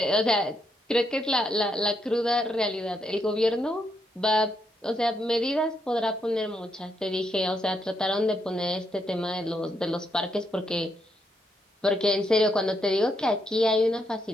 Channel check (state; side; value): normal; both; correlation 0.78